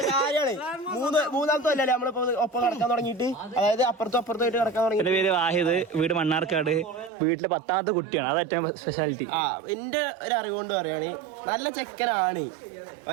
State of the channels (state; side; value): drops out; left; at 7.1 s